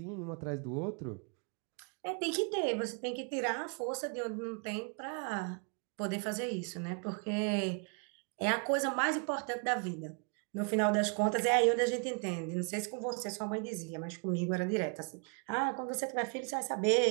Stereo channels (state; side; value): quieter; left; 37.8 dB